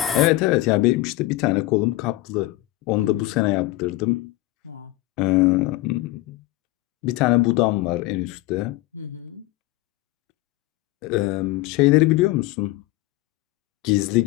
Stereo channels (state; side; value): quieter; right; 17.8 dB